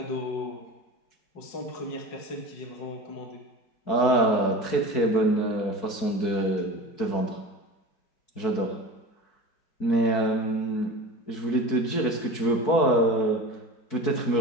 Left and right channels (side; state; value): right; late; 4.6 ms